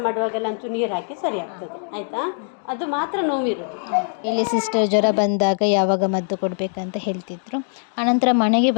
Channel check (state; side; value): silent; right; 59 dB below the other